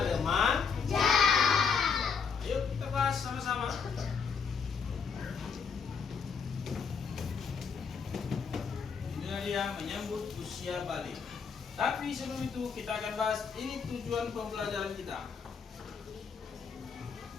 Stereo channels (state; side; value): quieter; right; 6.0 dB